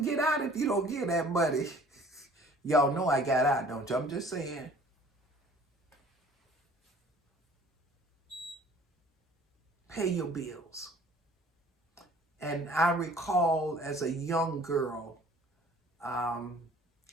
get out if you don't get that money. Y'all know I got out, don't you? I'm just saying. Pay your bills. And I recall as a young girl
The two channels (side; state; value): both; normal; correlation 0.51